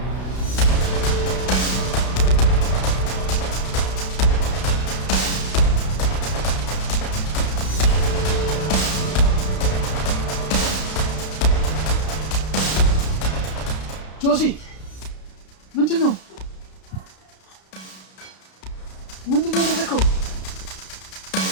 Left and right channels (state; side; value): late; right; 32 ms